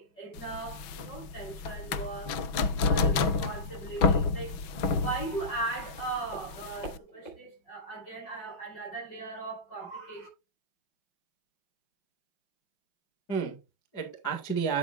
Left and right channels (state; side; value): late; right; 6.1 ms